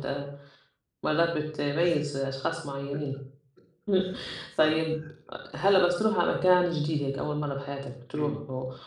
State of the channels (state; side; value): identical; both; correlation 1.00